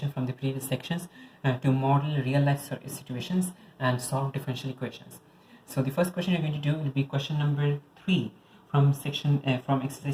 from the previous sections to model real life situations and solve differential equations. So the first question you're going to do will be question number 3 from from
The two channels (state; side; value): identical; both; correlation 1.00